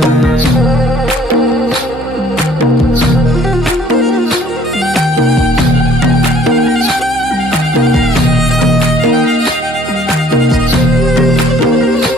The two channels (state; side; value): normal; both; correlation 0.58